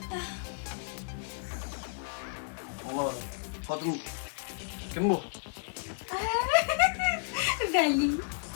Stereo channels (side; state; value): right; silent; digital silence